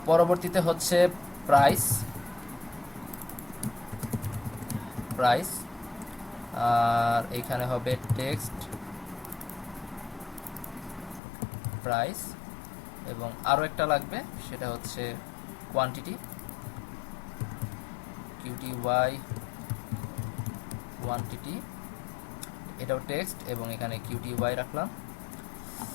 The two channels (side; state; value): right; drops out; at 11.2 s